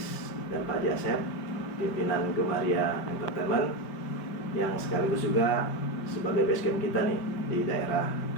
dan Pak Haji Asep, pimpinan Gemaria Entertainment yang sekaligus juga sebagai basecamp kita nih di daerah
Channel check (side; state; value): right; late; 5.0 ms